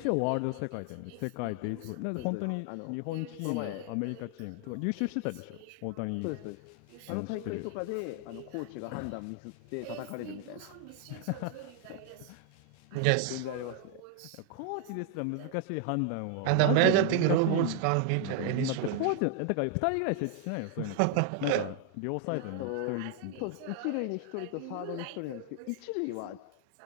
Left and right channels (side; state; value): both; different; correlation 0.00